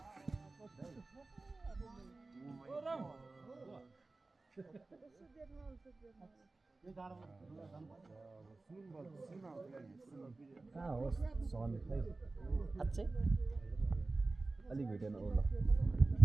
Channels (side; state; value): left; quieter; 3.4 dB